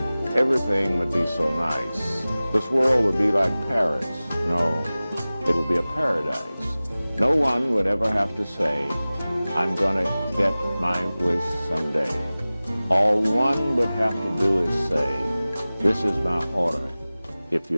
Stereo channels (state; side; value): inverted; both; correlation -0.98